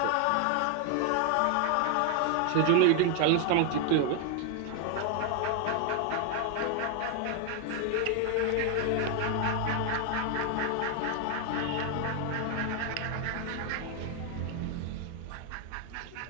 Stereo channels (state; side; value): different; both; correlation 0.01